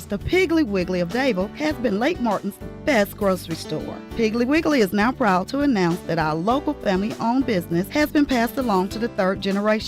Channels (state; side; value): identical; both; correlation 1.00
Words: the Piggly Wiggly of Dable has been Lake Martin's best grocery store. Piggly Wiggly is now proud to announce that our local family-owned business has been passed along to the 3rd